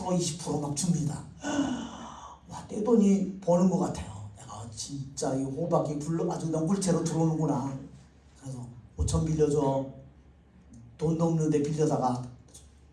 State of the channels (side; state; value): both; identical; correlation 1.00